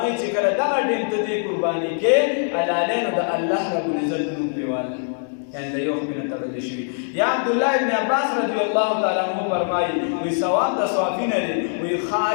چې کله دغه ټیم ته دې قرباني کې حلالې نو د الله رب العزت نوم پرې والی یعنی د یو خپې نه تړلې شوي یا عبدالله ابن عباس رضی الله تعالی عنه فرمایي وایي ثواب د صوافي نه دی وایي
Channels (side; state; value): right; silent; digital silence